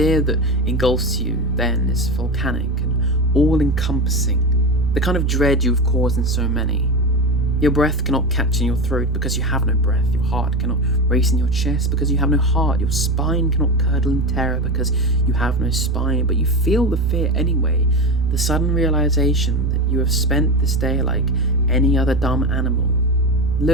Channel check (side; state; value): both; normal; correlation 0.21